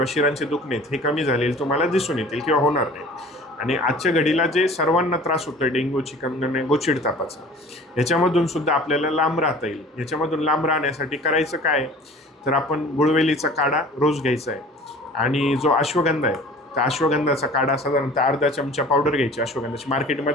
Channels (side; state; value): both; normal; correlation 0.45